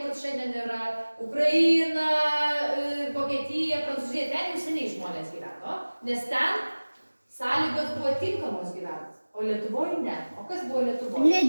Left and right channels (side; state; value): both; inverted; correlation -1.00